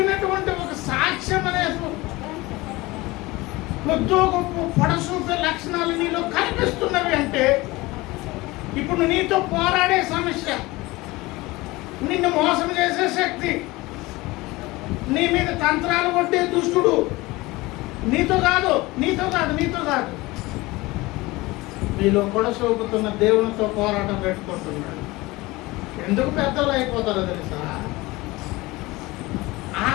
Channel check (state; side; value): quieter; right; 21.1 dB